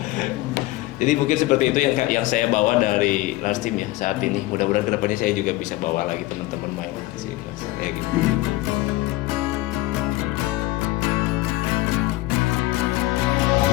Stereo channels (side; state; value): right; quieter; 18.5 dB